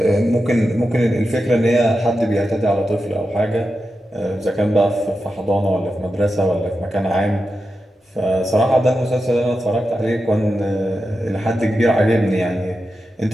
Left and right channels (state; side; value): normal; both; correlation 0.90